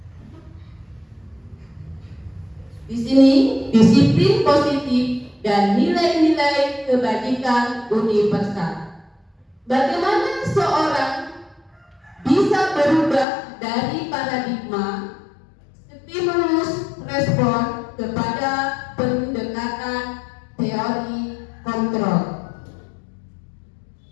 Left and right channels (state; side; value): drops out; right; at 13.2 s